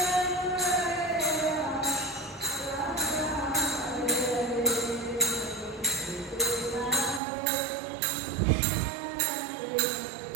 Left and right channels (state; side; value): drops out; left; at 7.2 s